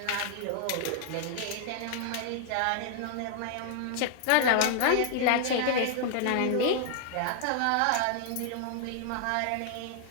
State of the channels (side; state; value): both; different; correlation 0.00